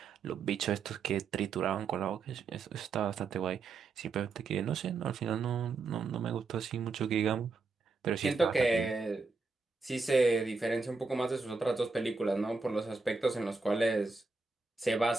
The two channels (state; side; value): quieter; left; 4.2 dB